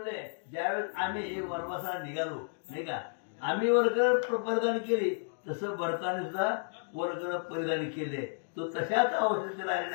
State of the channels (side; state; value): right; silent; digital silence